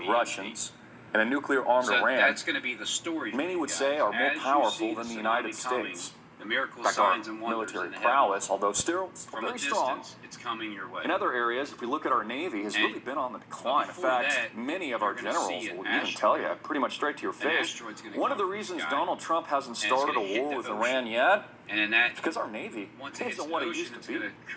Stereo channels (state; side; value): identical; both; correlation 1.00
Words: EMP. Russians and a nuclear-armed So Iran, that's going to be the story. for many you would guys. say are more As you powerful see than the tsunami United coming, States. The miracle In fact, our signs and wonders military in the prowess, although still heavens. From a very strong. distance, it's coming your way. In other areas, if we look at our Navy, has And- really been on the decline. In before fact, that, many of you're our gonna generals see an will even tell you, pretty much straight to your face, asteroid's gonna one of the come from the reasons sky, Donald Trump hasn't and it's started gonna a hit war the with ocean. Iran yet And in that, is because our Navy once it hits isn't the what it ocean, used it's to going be. to